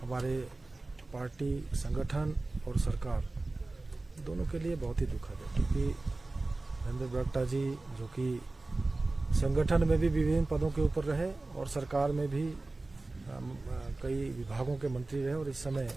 हमारे पार्टी, संगठन और सरकार दोनों के लिए बहुत ही दुखद है, क्योंकि नरेंद्र बरागटा जी जो कि संगठन में भी विभिन्न पदों के ऊपर रहे और सरकार में भी कई विभागों के मंत्री रहे और इस समय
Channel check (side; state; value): left; quieter; 3.1 dB